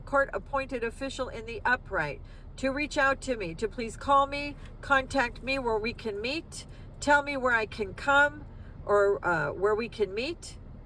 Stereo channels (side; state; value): both; identical; correlation 1.00